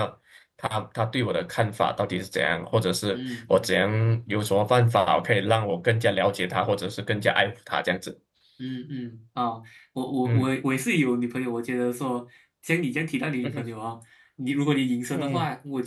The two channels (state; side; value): identical; both; correlation 1.00